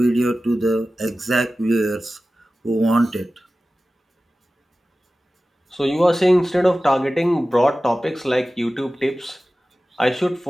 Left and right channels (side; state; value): both; normal; correlation 0.96